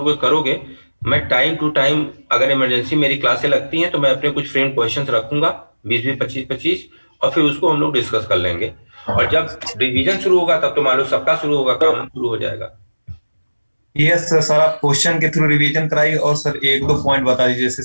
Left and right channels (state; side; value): inverted; both; correlation -1.00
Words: करोगे मैं टाइम टू टाइम अगर इमरजेंसी मेरी क्लासें लगती हैं तो मैं अपने कुछ फ्रेंड क्वेश्चंस रखूंगा 20-20 25 और फिर उसको हम लोग डिस्कस कर लेंगे। और जब रिवीजन शुरू होगा तब तो मान लो सबका शुरू होगा, काम शुरू हो जाएगा। यस सर, आप क्वेश्चन के थ्रू रिवीजन कराइए और सर एक दो पॉइंट बता दीजिए, जैसे